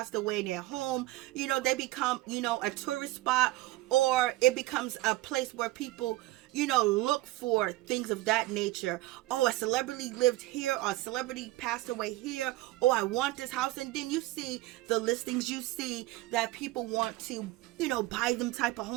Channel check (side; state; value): left; quieter; 18.1 dB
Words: away in their home, you know, they become, you know, a tourist spot, or it becomes a place where people, you know, look for things of that nature. Oh, a celebrity lived here, or a celebrity passed away here. Oh, I want this house. And then you see the listings, you see that people want to, you know, buy them type of